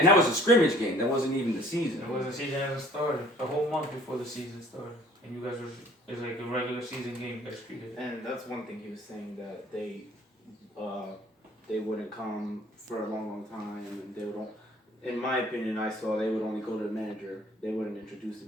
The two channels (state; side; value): normal; both; correlation 0.54